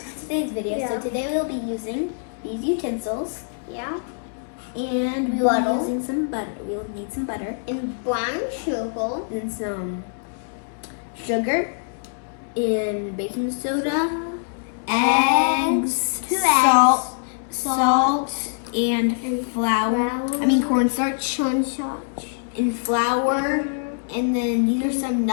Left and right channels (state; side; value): silent; right; digital silence